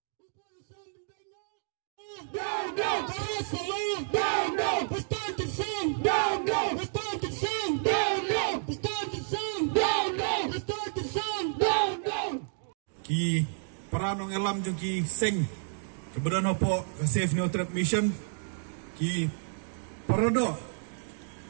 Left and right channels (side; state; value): left; silent; digital silence